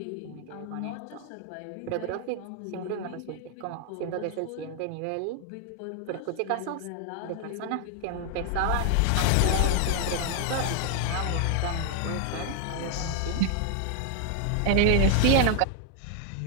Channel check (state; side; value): different; both; correlation 0.00